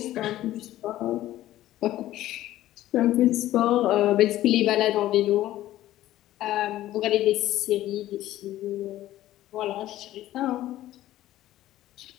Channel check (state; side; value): quieter; right; 14.4 dB